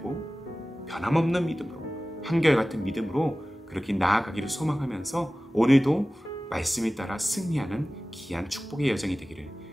변함없는 믿음으로 한결같은 믿음으로 그렇게 나아가기를 소망하면서 오늘도 말씀에 따라 승리하는 귀한 축복의 여정이 되기를,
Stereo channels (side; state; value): both; normal; correlation 0.97